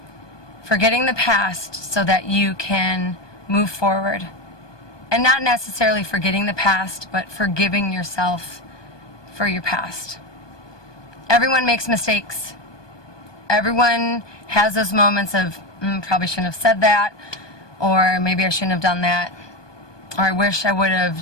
Forgetting the past so that you can move forward. And not necessarily forgetting the past, but forgiving yourself for your past. Everyone makes mistakes. Everyone has those moments of, probably shouldn't have said that, or maybe I shouldn't have done that, or I wish I would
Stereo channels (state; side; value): late; right; 1.2 ms